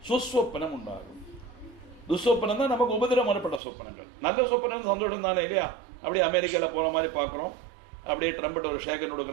சுஸ்வப்பனம் உண்டாகும். துஸ்வப்பனம் தான் நமக்கு உபதிரம் வரப்பட்ட சொப்பனங்கள். நல்ல சொப்பனம் சந்தோஷம் தானே இல்லையா? அப்படியே அமெரிக்காவில் போகிற மாதிரி பார்க்குறோம், அப்படியே ட்ரம்பட் ஒரு ஷேகன்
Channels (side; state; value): left; drops out; at 3.6 s